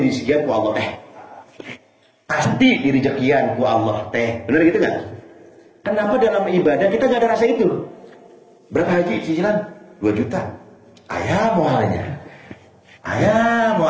sekian ku Allah teh. Pasti diri rezekian ku Allah teh. Benar gitu nggak? Kenapa dalam ibadah kita nggak ada rasa itu? Berapa haji cicilan? 2 juta. Ayah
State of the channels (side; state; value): both; identical; correlation 1.00